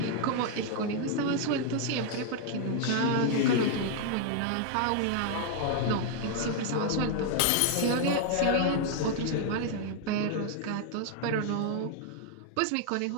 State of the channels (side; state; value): both; different; correlation 0.00